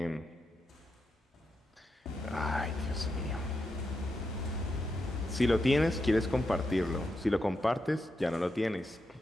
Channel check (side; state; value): both; normal; correlation 0.85